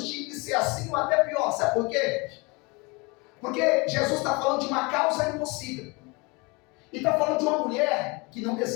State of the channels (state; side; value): quieter; right; 27.4 dB